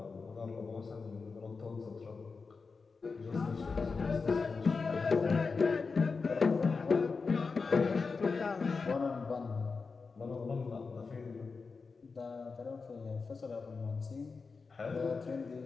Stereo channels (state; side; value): quieter; right; 4.6 dB